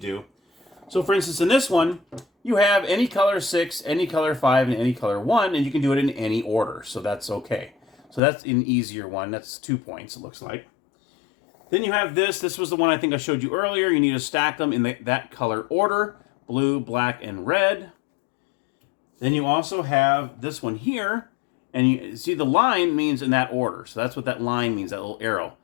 So for instance, in this one, you have any color 6, any color 5, and any color 1, and you can do it in any order, so that's okay. So that's an easier one, that's 2 points, it looks like. Then you have this was the one I think I showed you earlier. You need to stack them in that color order, blue, black, and red. Then you also have this one here, and you see the line means in that order. So that's what that line means, that little arrow.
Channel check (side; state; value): right; drops out; at 8.2 s